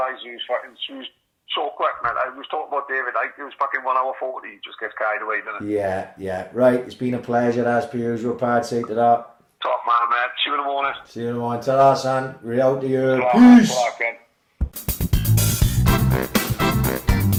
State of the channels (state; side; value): identical; both; correlation 1.00